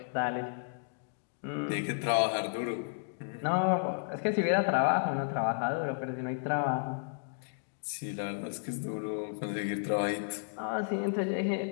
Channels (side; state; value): right; silent; digital silence